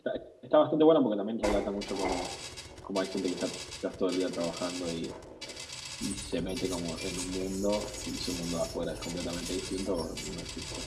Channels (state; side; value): identical; both; correlation 1.00